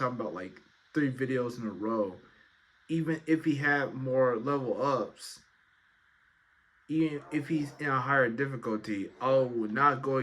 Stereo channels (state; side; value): identical; both; correlation 1.00